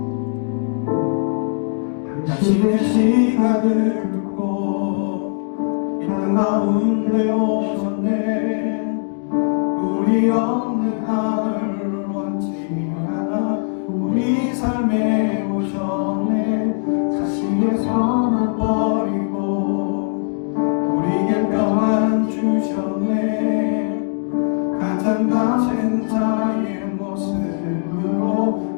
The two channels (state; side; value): silent; right; 66 dB below the other